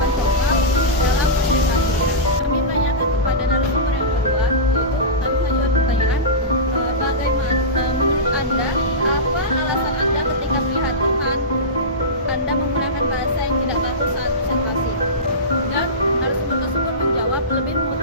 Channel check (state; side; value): normal; both; correlation -0.18